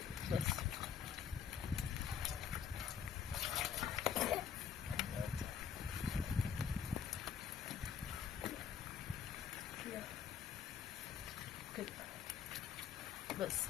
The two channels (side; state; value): right; quieter; 7.7 dB